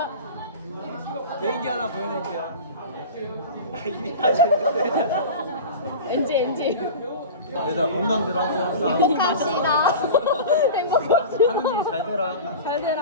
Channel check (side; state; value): both; inverted; correlation -0.32